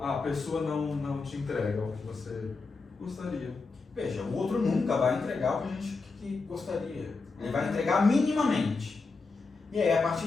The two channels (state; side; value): quieter; right; 4.1 dB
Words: A pessoa não te entrega o que você gostaria. Veja, o outro nunca vai entregar o que a gente gostaria. Ele vai entregar minimamente. E aí, a partir